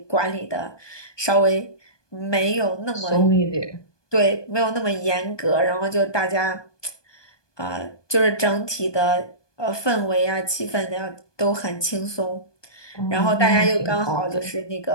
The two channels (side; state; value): right; late; 1.2 ms